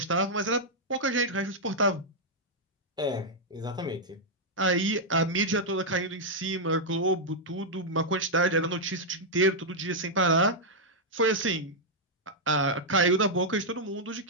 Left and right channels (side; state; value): both; normal; correlation -0.04